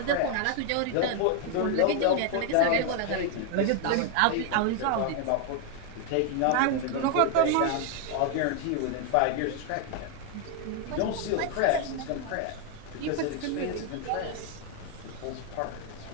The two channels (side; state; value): both; different; correlation 0.00